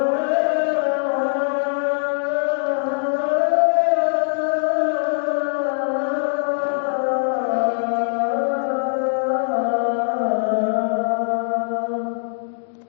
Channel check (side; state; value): right; silent; digital silence